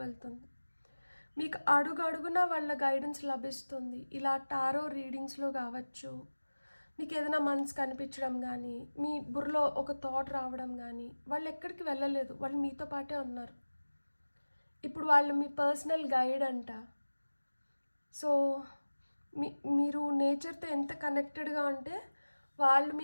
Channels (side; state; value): both; inverted; correlation -1.00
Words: వెళ్తుంది. మీకు అడుగడుగున వాళ్ళ గైడెన్స్ లభిస్తుంది. ఇలా టారో రీడింగ్స్లో కావచ్చు, మీకు ఏదైనా మనసు కనిపించడం కానీ, మీ బుర్రలో ఒక థాట్ రావడం కానీ, వాళ్ళు ఎక్కడికి వెళ్ళలేదు, వాళ్ళు మీతో పాటే ఉన్నారు. ఇప్పుడు వాళ్ళు మీ పర్సనల్ గైడ్ అంట. సో మీరు నేచర్తో ఎంత కనెక్టెడ్గా ఉంటే వాళ్ళు